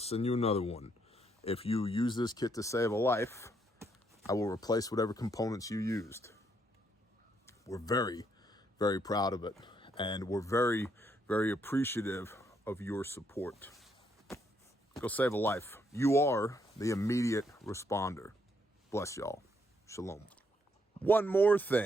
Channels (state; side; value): normal; both; correlation 0.74